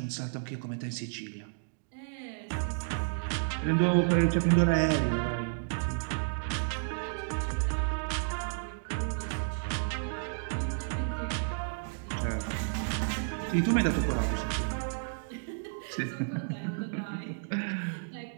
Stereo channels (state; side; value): silent; left; digital silence